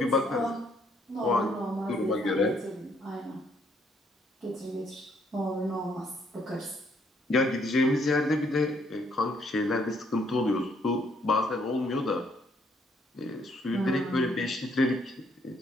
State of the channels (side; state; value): both; normal; correlation 0.68